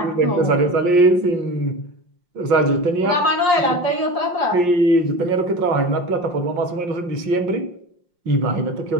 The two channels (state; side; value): late; left; 5.7 ms